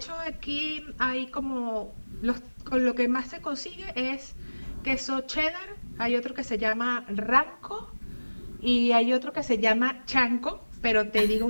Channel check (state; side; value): inverted; both; correlation -1.00